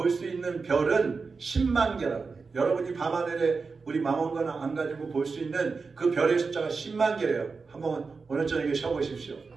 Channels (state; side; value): quieter; left; 4.6 dB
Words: 수 있는 별은 10만 개라고 해요. 여러분이 밤하늘에 우리 망원경 안 가지고 볼 수 있는 그 별의 숫자가 10만 개예요. 한번 오늘 저녁에 쉬어보십시오.